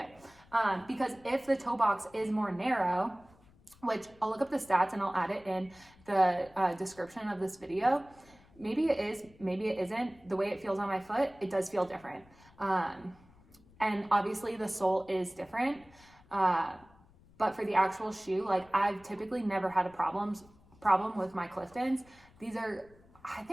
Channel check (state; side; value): noise; left; rumble, 27 dB below the sound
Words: Because if the toe box is more narrow, which I'll look up the stats and I'll add it in the description of this video. Maybe it is, maybe it isn't. The way it feels on my foot, it does feel different. And obviously the sole is different. But for the actual shoe, like, I've typically never had a problem with my Cliftons. These are, I